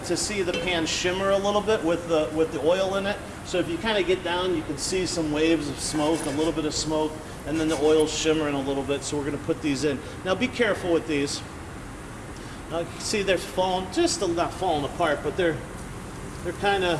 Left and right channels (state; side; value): identical; both; correlation 1.00